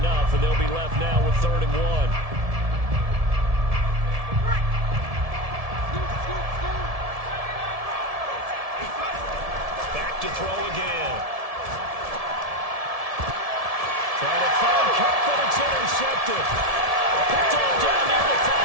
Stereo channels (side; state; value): left; late; 1.7 ms